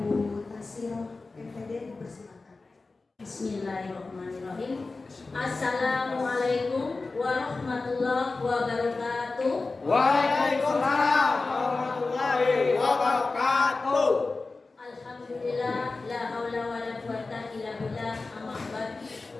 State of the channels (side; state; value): right; quieter; 3.7 dB